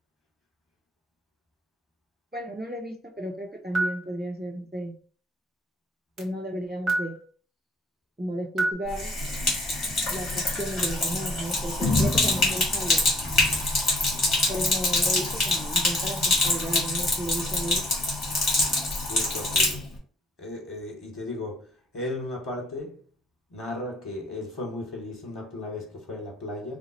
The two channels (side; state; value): both; normal; correlation 0.60